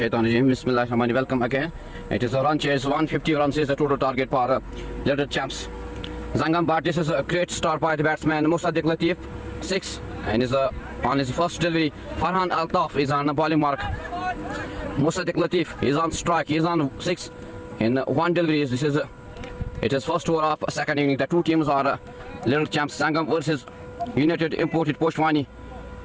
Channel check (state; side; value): identical; both; correlation 1.00